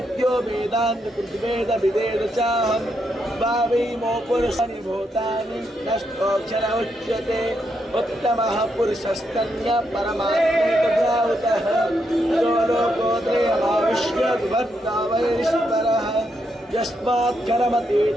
वेदान्तकृद्वेदविदेव चाहं भावैमो पुरुषाणि भूतानि नष्टोऽक्षर उच्यते। उत्तमः पुरुषस्तन्यः परमात्मैकभ्रावुतः यो लोकोत्रयमाविश्य विभक्ता वैरीश्वरः यस्मात्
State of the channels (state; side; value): normal; both; correlation 0.80